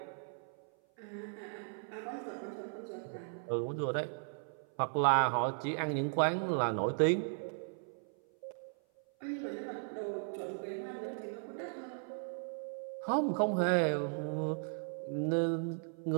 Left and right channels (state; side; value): silent; left; 53 dB below the other